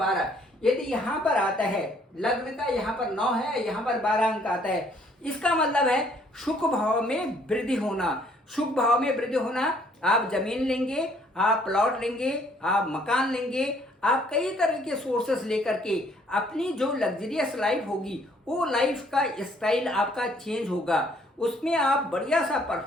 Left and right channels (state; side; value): normal; both; correlation 0.63